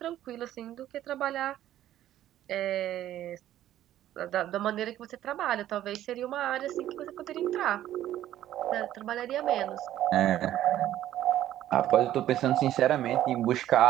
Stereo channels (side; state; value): left; quieter; 12.6 dB